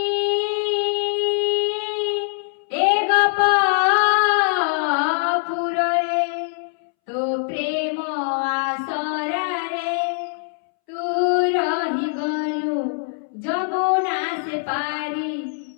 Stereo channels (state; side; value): silent; right; 64 dB below the other